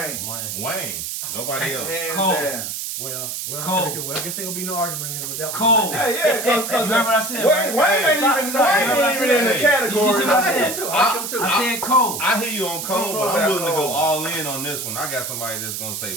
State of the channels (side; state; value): right; noise; hiss, 5 dB below the sound